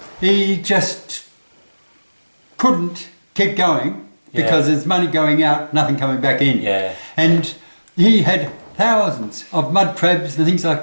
he just couldn't keep going because there's money going out, nothing coming back in. And he had thousands of mud crabs and things like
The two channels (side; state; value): both; inverted; correlation -1.00